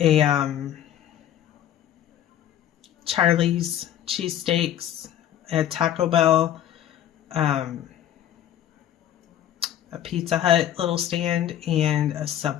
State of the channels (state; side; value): quieter; right; 11.1 dB